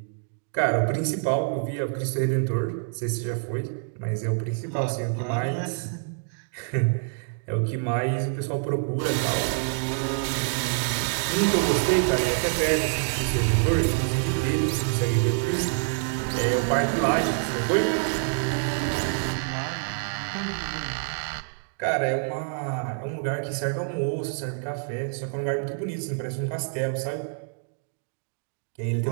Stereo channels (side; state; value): left; silent; digital silence